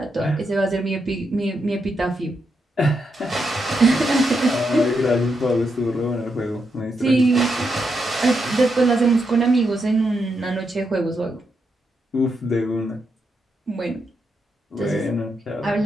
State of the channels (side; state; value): both; normal; correlation 0.83